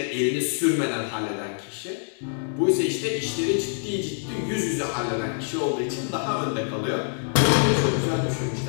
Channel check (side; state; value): right; silent; 61 dB below the other